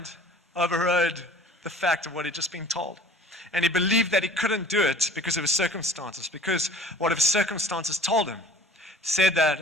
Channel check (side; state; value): both; normal; correlation 0.48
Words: overrode the fact of what he'd just been told. And he believed that he couldn't do it because of his circumstances, because what his circumstances told him. Said that